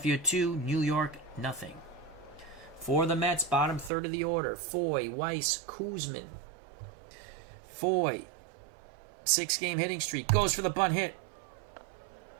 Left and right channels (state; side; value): drops out; left; at 3.9 s